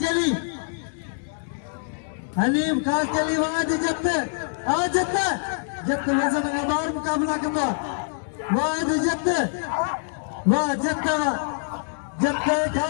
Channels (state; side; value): silent; right; digital silence